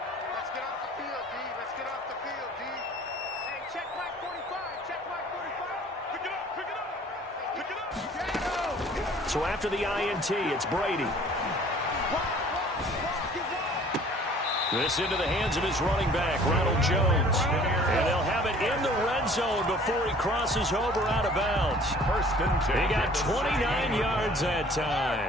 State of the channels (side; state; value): both; normal; correlation 0.51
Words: Let's get off the field, D. Let's get off the field, D. Hey, check Mike 45. Check Mike 45. Pick it up. Pick it up. Pick it up. So after the INT, it's Brady. This into the hands of his running back, Ronald Jones. And they'll have it in the red zone before he crosses over out of bounds. First and 10. He got 29 yards that